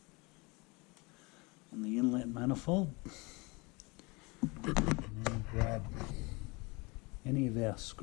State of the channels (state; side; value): quieter; right; 26.8 dB